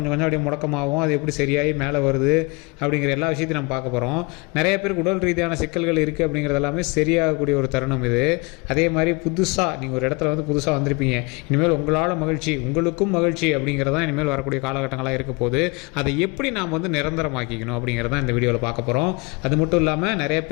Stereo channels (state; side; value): quieter; right; 28.0 dB